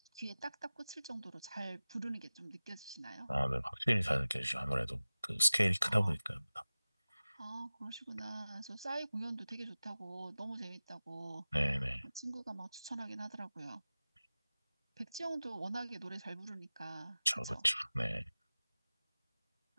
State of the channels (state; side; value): inverted; both; correlation -0.96